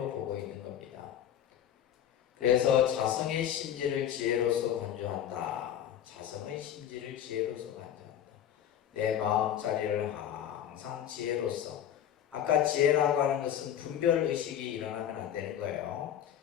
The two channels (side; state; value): right; quieter; 10.2 dB